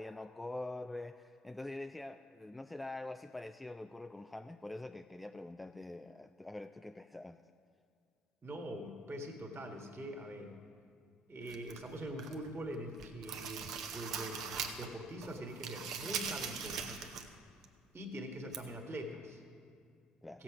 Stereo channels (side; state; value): both; normal; correlation 0.62